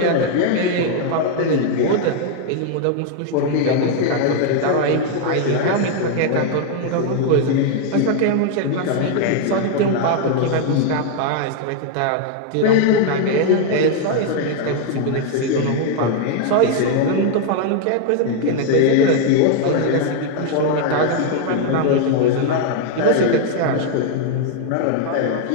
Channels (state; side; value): different; both; correlation 0.00